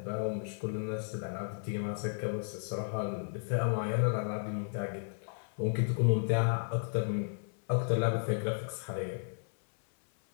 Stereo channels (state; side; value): silent; right; 55 dB below the other